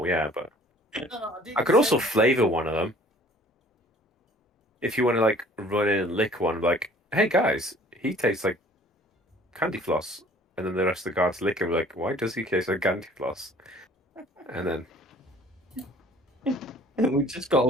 yeah, but No, I could also flavour one of them. If you want to like run in and lick one, like, hey guys, he tastes like candy floss, and then the rest of the guards lick him, like, why does he taste like candy floss? And then We just got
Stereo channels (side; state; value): both; normal; correlation 0.52